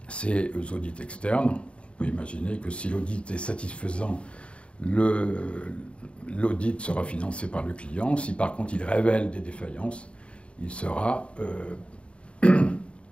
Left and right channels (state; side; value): late; right; 0.059 ms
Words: ces audits externes. On peut imaginer que si l'audit est satisfaisant, l'audit sera financé par le client. Si par contre il révèle des défaillances, il sera